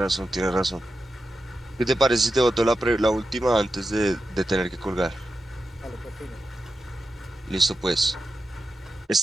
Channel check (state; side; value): normal; both; correlation 0.90